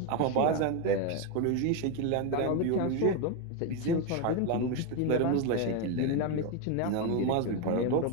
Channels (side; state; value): both; different; correlation 0.02